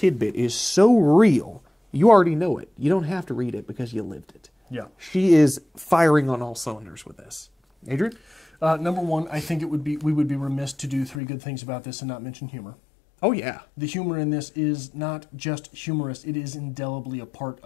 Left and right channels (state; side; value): drops out; right; at 11.2 s